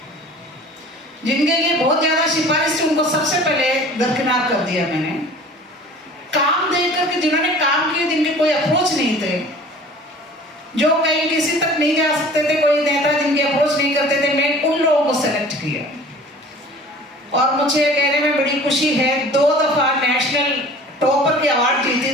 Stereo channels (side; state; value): both; normal; correlation 0.45